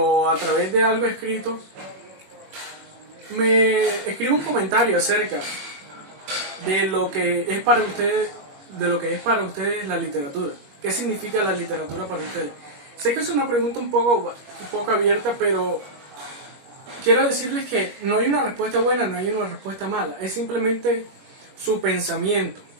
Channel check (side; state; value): left; late; 21 ms